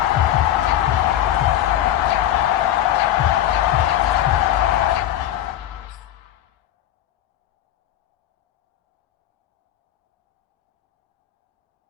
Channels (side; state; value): right; quieter; 12.3 dB